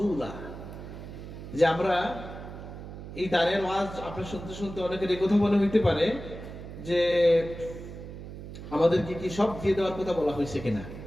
যে আমরা এই দানের ওয়াজ আপনার শুনতে শুনতে অনেকের এই কথা মনে হইতে পারে যে আমাদেরকে কি সব দিয়ে দেওয়ার কথা বলা হয়েছে কিনা।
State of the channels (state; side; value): noise; right; hum, 11 dB below the sound